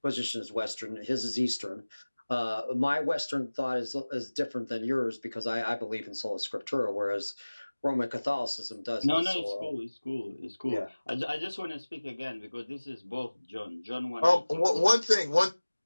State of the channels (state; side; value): inverted; both; correlation -1.00